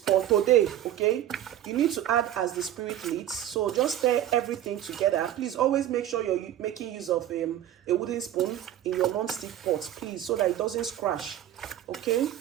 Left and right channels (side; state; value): left; quieter; 11.9 dB